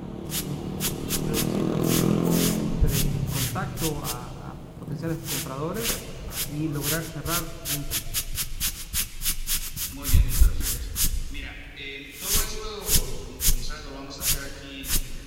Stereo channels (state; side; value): identical; both; correlation 1.00